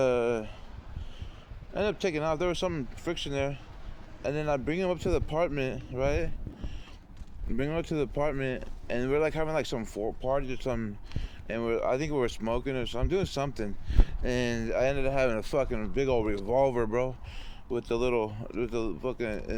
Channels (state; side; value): identical; both; correlation 1.00